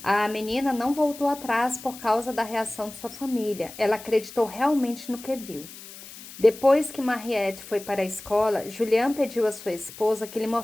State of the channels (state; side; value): noise; left; hiss, 16 dB below the sound